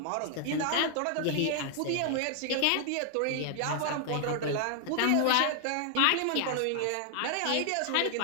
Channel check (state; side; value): different; both; correlation 0.00